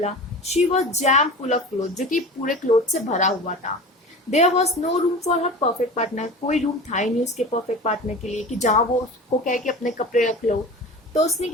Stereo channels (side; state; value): both; normal; correlation 0.34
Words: She was jam full of clothes, जो कि पूरे क्लोथ से भरा हुआ था। There was no room for her perfect partner. कोई रूम था ही नहीं उसके परफेक्ट पार्टनर के लिए कि जहाँ वो उसको कहे कि अपने कपड़े रख लो। तो उसने